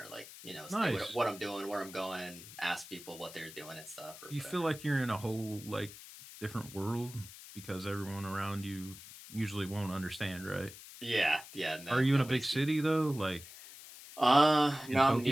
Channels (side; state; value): left; noise; hiss, 16 dB below the sound